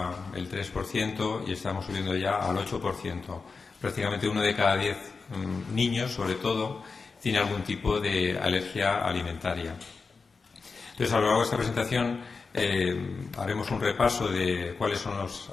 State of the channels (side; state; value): right; quieter; 4.6 dB